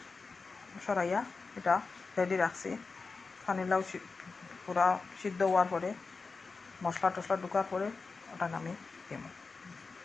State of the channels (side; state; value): right; quieter; 4.3 dB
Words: সরাইয়া এটা রেডি রাখছি। পানিলাও পুরা সিদ্ধ হওয়ার পরে মশলা টশলা ঢুকার পরে ওটা আমি দিব।